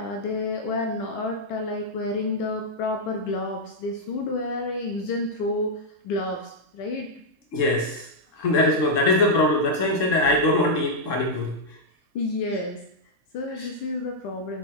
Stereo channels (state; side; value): late; right; 3.7 ms